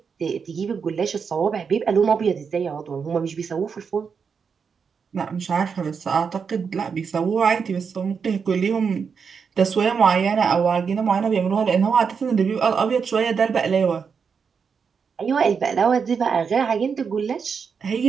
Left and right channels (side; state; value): left; quieter; 6.1 dB